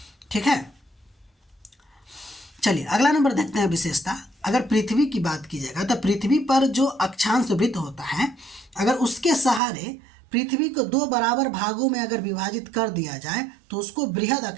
ठीक है। चलिए अगला नंबर देखते हैं विशेषता। अगर पृथ्वी की बात की जाएगा तो पृथ्वी पर जो अक्षांश वृत्त होता है, अगर उसके सहारे पृथ्वी को 2 बराबर भागों में अगर विभाजित कर दिया जाए तो उसको बृहद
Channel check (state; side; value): drops out; left; at 9.6 s